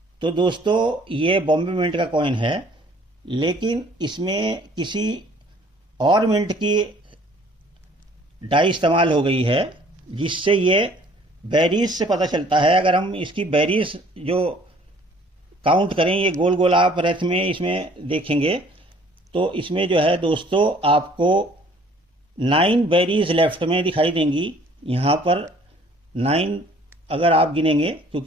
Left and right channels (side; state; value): both; normal; correlation 0.56